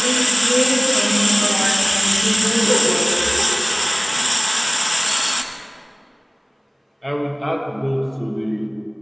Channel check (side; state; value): both; identical; correlation 1.00